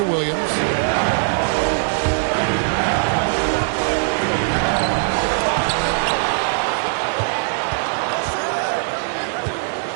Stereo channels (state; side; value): silent; left; 59 dB below the other